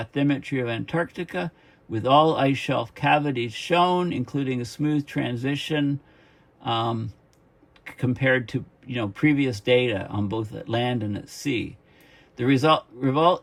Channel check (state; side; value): identical; both; correlation 1.00